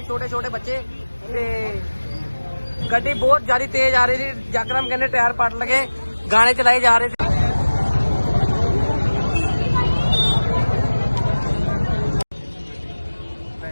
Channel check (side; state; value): both; inverted; correlation -1.00